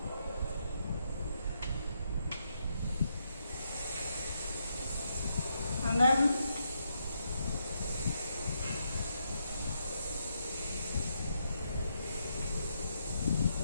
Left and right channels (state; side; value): inverted; both; correlation -0.80